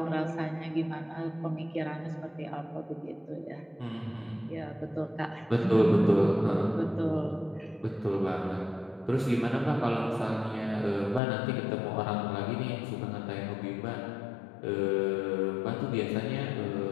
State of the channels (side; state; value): right; drops out; at 11.2 s